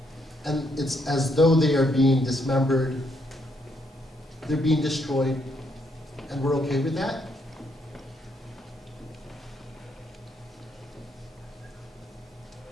and it's as though they are being dismembered, they're being destroyed, and we're okay with that?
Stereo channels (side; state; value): both; normal; correlation 0.74